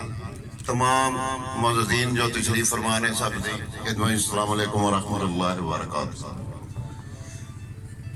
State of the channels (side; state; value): both; identical; correlation 1.00